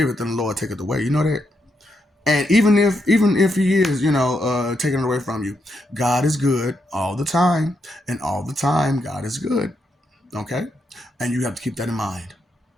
and the Lord taketh away. You know that? And even if he is, taking it away from you, God is good all the time, and all the time God is good. Okay? And you have to keep that in mind.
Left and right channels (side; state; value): both; normal; correlation 0.81